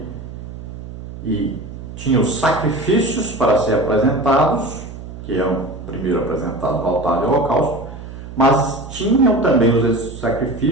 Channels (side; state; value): right; noise; hum, 12 dB below the sound